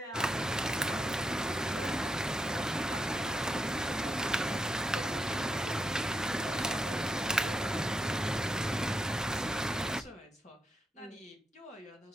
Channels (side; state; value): both; normal; correlation 0.82